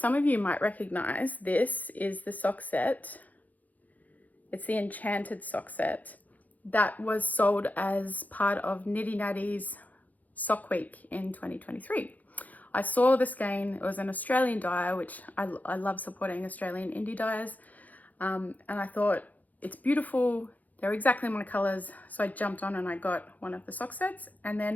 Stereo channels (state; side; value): late; right; 0.079 ms